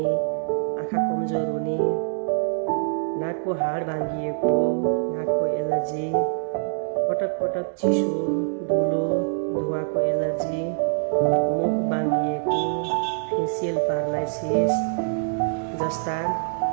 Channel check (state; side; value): silent; left; 62 dB below the other